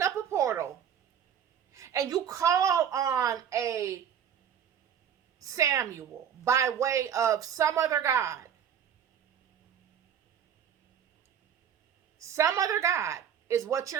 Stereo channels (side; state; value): left; quieter; 8.7 dB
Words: up a portal and you call on a Samuel by way of some other God, some other God is what